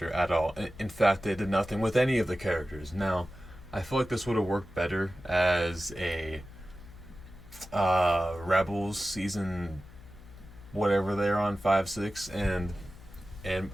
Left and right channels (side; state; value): left; noise; hum, 20 dB below the sound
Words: at all. In fact, they did nothing with any of the characters. Now, I feel like this would have worked better as a Rebels season, whatever they're on, 5, 6, and